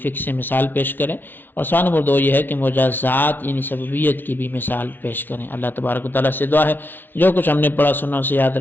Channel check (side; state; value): right; late; 0.095 ms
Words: فک سے مثال پیش کریں، اور سوال نمبر 2 یہ ہے کہ مجازات یعنی سببیت کی بھی مثال پیش کریں۔ اللہ تبارک و تعالیٰ سے دعا ہے جو کچھ ہم نے پڑھا سنا اسے یاد